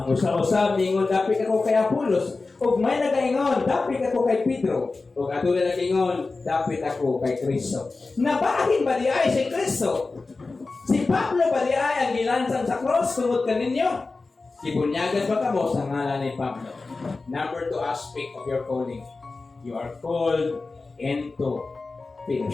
usa mingon, dapit ako kay Apolos. Ug may nagaingon, dapit ako kay Pedro. Ug atulad nagaingon, dapit ako kay Kristo. Nabahin ba di ay si Kristo? Si Pablo ba di ay ang gilansang sa cross tungod kaninyo? Ibunyagan ba kamo sa ngalan ni Pablo? Number 2 aspect of your calling. You are called into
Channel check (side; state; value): right; quieter; 3.8 dB